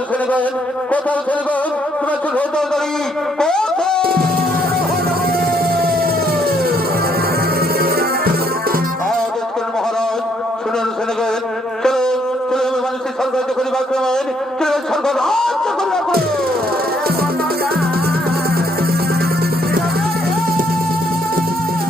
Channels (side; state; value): both; normal; correlation 0.70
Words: ছেড়ে গেন, কোথাও ছেড়ে গেন, তোমার চোখ হতারি মহারাজ শুনেন, শুনে গেন। চলো চলো মানুষের স্বর্গ রাজ্য করিবে আক্রমণ। চলো স্বর্গ রাজ্য করিবে আক্রমণ।